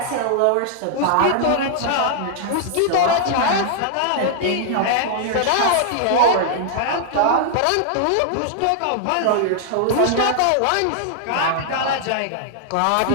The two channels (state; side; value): different; both; correlation -0.01